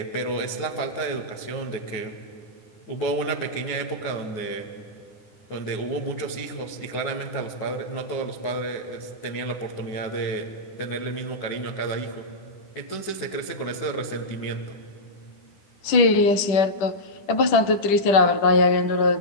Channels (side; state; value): right; late; 10 ms